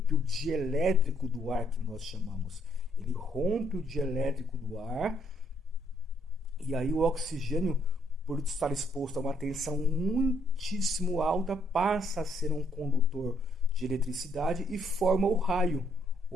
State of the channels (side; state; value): both; normal; correlation 0.69